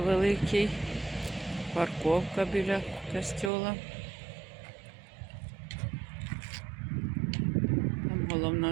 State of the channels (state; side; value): drops out; left; at 3.5 s